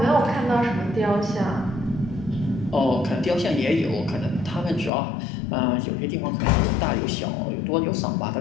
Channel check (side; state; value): right; drops out; at 4.9 s